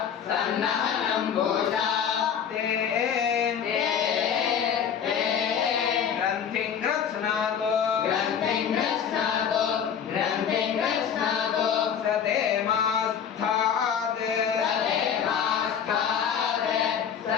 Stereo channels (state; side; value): quieter; right; 8.0 dB